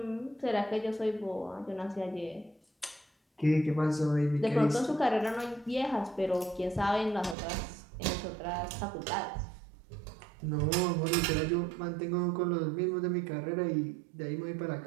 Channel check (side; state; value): left; drops out; at 7.4 s